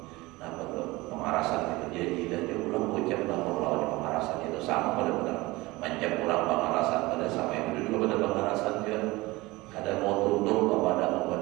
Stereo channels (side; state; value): left; quieter; 21.2 dB